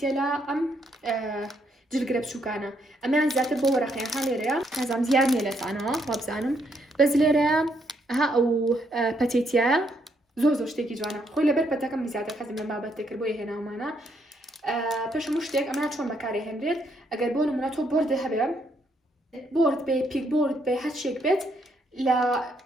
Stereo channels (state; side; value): normal; both; correlation 0.73